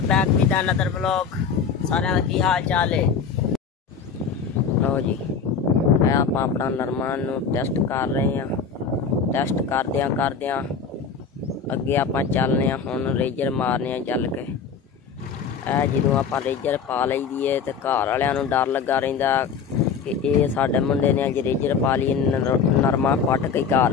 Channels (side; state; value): right; quieter; 6.1 dB